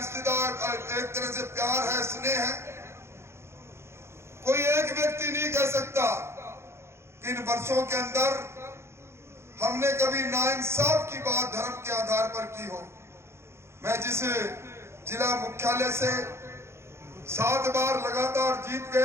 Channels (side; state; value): left; late; 0.13 ms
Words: एक तरह से प्यार है, स्नेह है। कोई एक व्यक्ति नहीं कह सकता कि इन वर्षों के अंदर हमने कभी नाइंसाफ की बात धर्म के आधार पर की हो। मैं जिस जिला मुख्यालय से 7 बार लगातार जीत